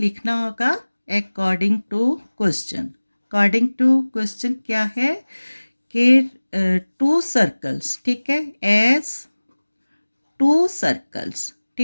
होगा according to question. According to question क्या है कि 2 सर्कल्स, ठीक है, एज 2 सर्कल्स,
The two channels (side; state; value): both; inverted; correlation -1.00